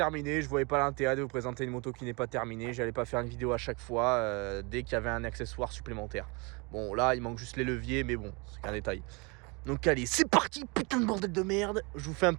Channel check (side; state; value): left; quieter; 29.4 dB